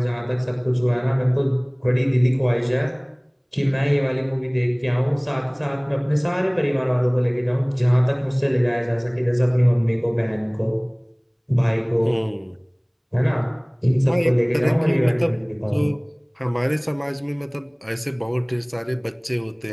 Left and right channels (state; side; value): identical; both; correlation 1.00